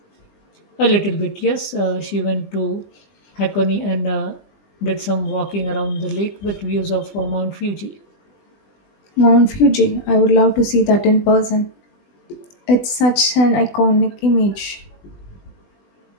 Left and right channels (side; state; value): right; late; 20 ms